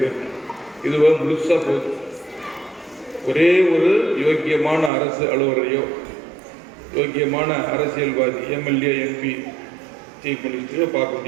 இதுவோ முழுசாக போகுது. ஒரே ஒரு யோக்கியமான அரசு அலுவலரையோ யோக்கியமான அரசியல்வாதி எம்எல்ஏ எம்பி சீஃப் மினிஸ்டரையோ பார்க்க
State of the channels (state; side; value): drops out; left; at 4.9 s